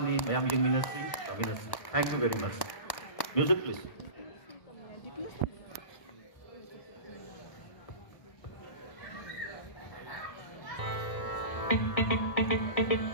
ni mayam yang minasi. Thank you very much. Music please.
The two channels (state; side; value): late; right; 1.1 ms